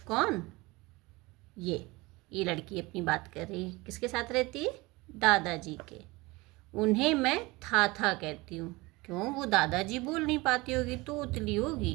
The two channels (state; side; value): quieter; left; 22.8 dB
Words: कौन? ये लड़की अपनी बात कर रही है। किसके साथ रहती है? दादाजी के। उन्हें मैं थाथा कहती हूँ। क्यों? वो दादाजी बोल नहीं पाती होगी तो उतली